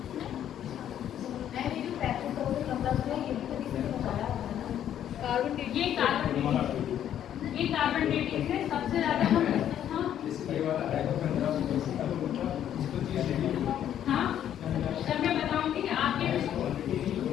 ये कार्बन डेटिंग से सबसे ज्यादा हम हाँ, जब मैं बताऊंगी आपके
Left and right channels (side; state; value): right; quieter; 10.4 dB